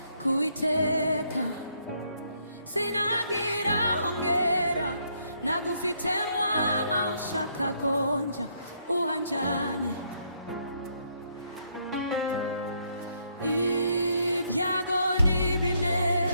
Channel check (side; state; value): both; inverted; correlation -0.72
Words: kuiteka sinagira hongera nagufite mwama ushaka konja uhanjane ibyago